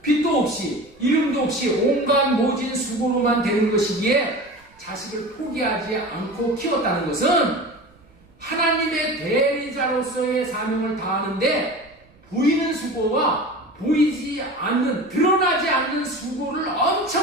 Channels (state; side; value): noise; right; rumble, 30 dB below the sound